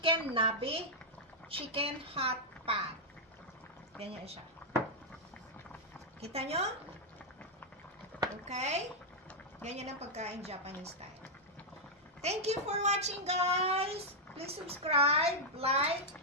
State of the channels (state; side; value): normal; both; correlation -0.05